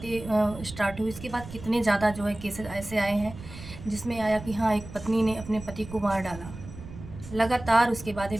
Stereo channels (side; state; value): right; noise; rumble, 14 dB below the sound